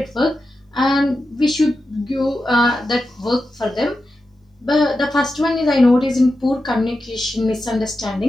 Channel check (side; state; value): both; normal; correlation 0.90